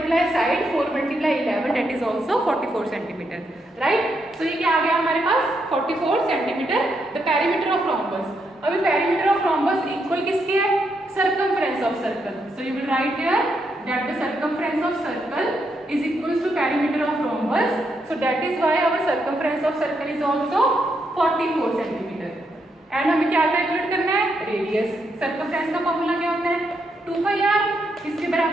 side 4 multiply 11 that is also 44 centimetre, right. So ये क्या आ गया हमारे पास 44 centimetre the perimeter of rhombus. अभी पेरीमीटर ऑफ रोम्बस इक्वल किसके है, circumference of circle. So you will right here that the circumference of circle is equals to perimeter of rhombus, so that is why our circumference of circle is also 44 centimeter। and हमें क्या calculate करना है, radius. Circumference का formula क्या होता है 2πr, किसके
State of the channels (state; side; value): normal; both; correlation 0.80